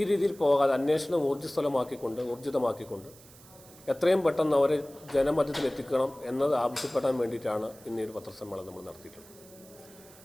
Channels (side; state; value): right; noise; hiss, 22 dB below the sound